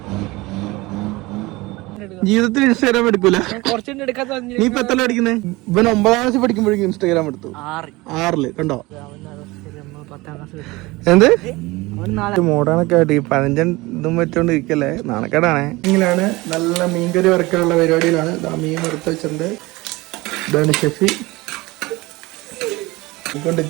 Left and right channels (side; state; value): left; quieter; 21.7 dB